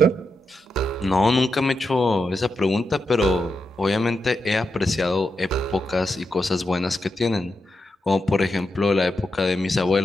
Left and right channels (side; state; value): both; normal; correlation 0.86